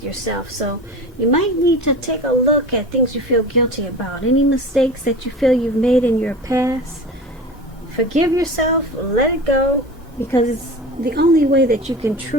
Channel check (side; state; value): both; normal; correlation 0.33